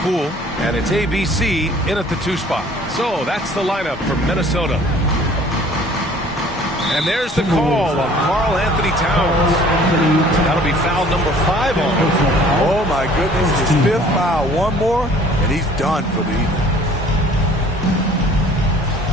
And it's ABC in at the 2 spot. So that's the lineup for Minnesota. And there's the call on Karl Anthony Towns. That'll be foul number 5 on him. Oh my goodness, his 5th foul. One more, and he's done for the evening.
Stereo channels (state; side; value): normal; both; correlation 0.52